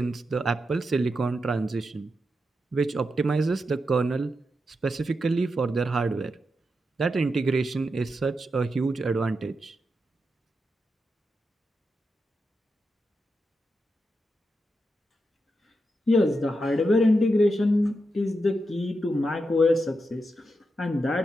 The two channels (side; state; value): both; normal; correlation 0.86